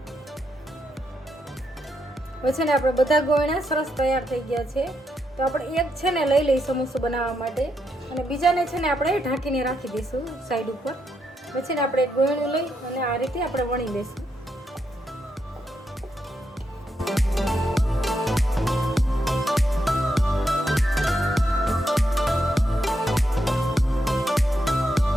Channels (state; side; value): normal; both; correlation 0.81